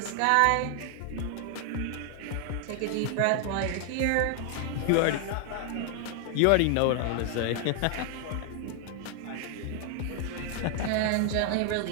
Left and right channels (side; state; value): both; different; correlation 0.00